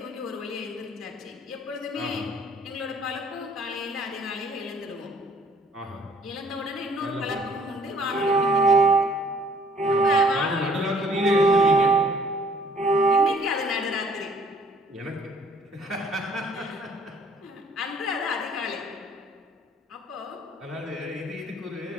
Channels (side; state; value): both; normal; correlation 0.59